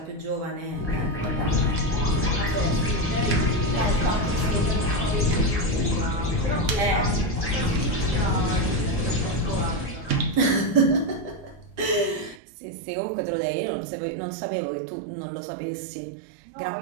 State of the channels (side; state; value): left; drops out; at 12.4 s